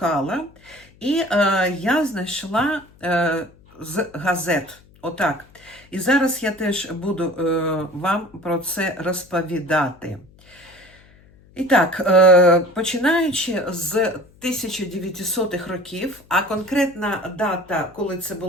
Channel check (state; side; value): noise; left; hum, 27 dB below the sound